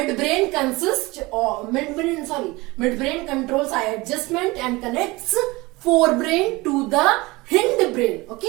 controls eye adjustment and connects forebrain to the hindbrain.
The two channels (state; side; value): quieter; left; 22.3 dB